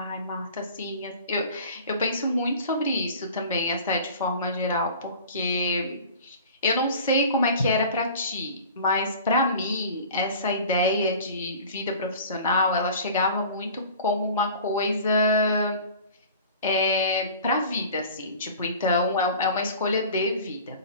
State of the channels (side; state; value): both; inverted; correlation -0.42